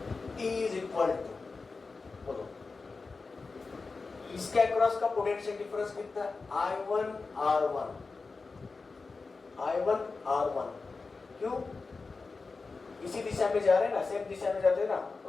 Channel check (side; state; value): right; quieter; 4.1 dB